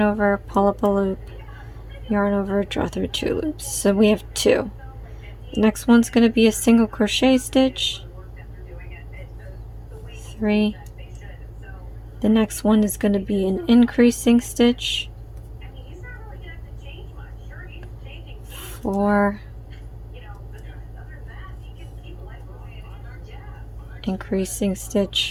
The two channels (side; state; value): both; identical; correlation 1.00